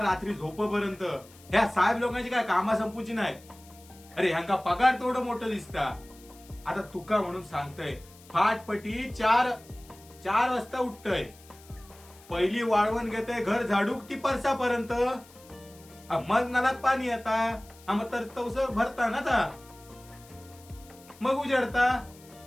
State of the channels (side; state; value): left; noise; hiss, 24 dB below the sound